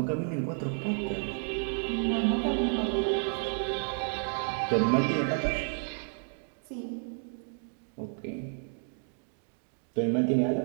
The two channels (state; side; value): silent; left; 57 dB below the other